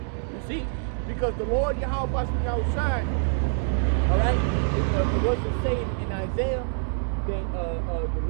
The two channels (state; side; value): silent; left; digital silence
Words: You see? Because the Lord Yahweh Basmi outside, alright? It wasn't saying in Isaiah that the